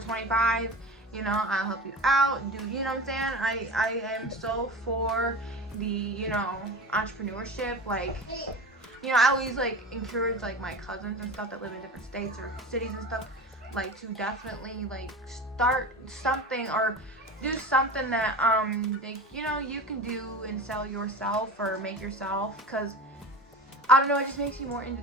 25. You know, I'll help you out. You know what I'm saying? I am so for the, you know, entrepreneurship. Like, you know, I always like encourage like my cousins and stuff that live in different states or cities and stuff, like to definitely like start something or do something that they, you know, you can do and sell yourself or make yourself, because I don't know, it just makes you more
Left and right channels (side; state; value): both; normal; correlation 0.32